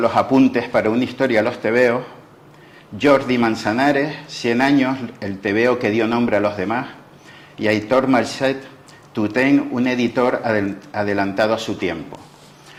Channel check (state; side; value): identical; both; correlation 1.00